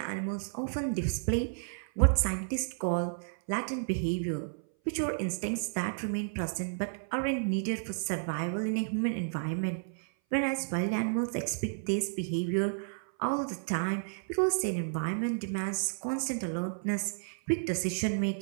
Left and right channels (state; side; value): silent; left; 57 dB below the other